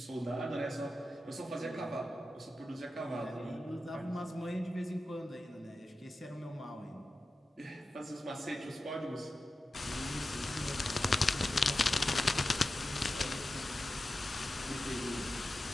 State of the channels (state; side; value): normal; both; correlation 0.92